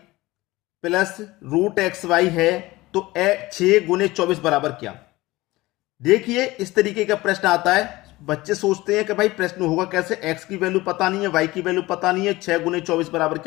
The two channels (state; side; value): quieter; right; 19.6 dB